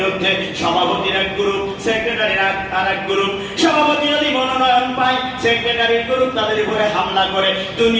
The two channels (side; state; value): both; identical; correlation 1.00